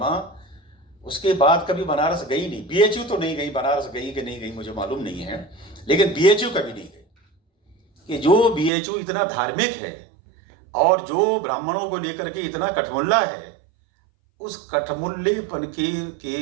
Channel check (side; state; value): left; drops out; at 8.7 s